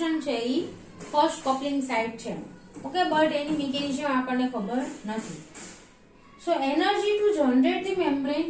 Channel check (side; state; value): both; identical; correlation 1.00